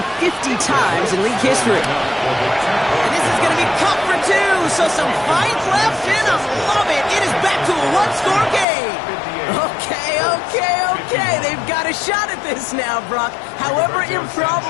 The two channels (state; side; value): drops out; right; at 8.7 s